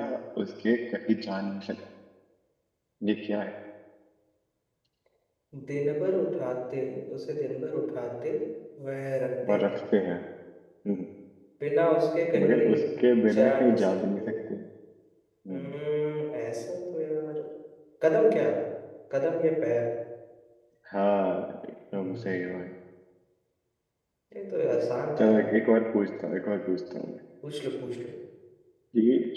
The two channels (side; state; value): both; identical; correlation 1.00